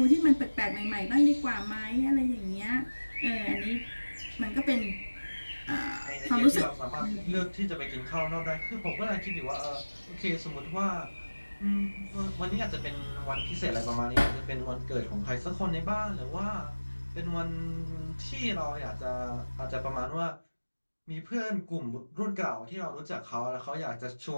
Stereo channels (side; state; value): both; inverted; correlation -1.00